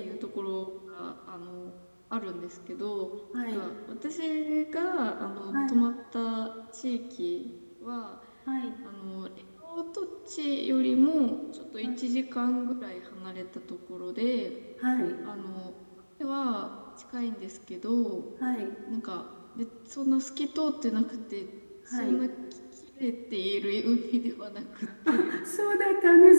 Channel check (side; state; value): both; inverted; correlation -1.00